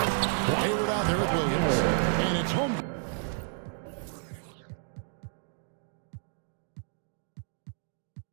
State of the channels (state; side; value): silent; left; 57 dB below the other